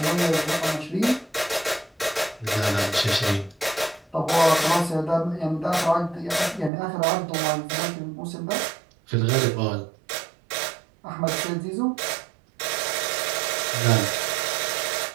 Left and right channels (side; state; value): left; drops out; at 6.7 s